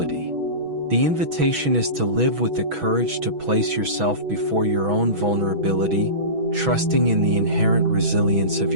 The invitation is to live with the courage to place yourself before your own vulnerability, trusting in the inherent resilience of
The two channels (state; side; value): late; left; 6.1 ms